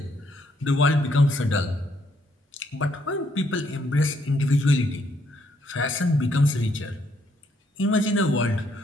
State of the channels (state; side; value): normal; both; correlation 0.72